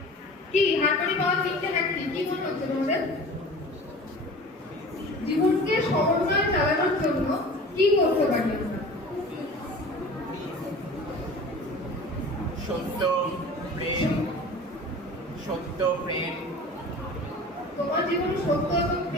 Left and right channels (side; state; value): both; normal; correlation 0.40